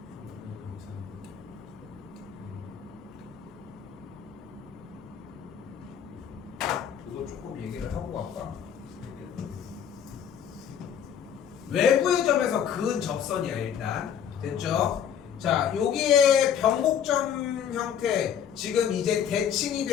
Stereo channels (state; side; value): quieter; right; 8.6 dB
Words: 이거 조금 얘기를 하고 갈까? 외부의 점에서 그은 접선이야 일단. 됐죠? 자, 여기에 변곡점 형태, 지금 이제 대칭이